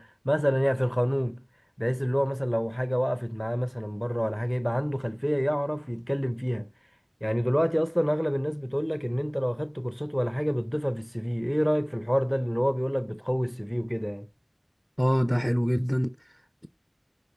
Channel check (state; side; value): identical; both; correlation 1.00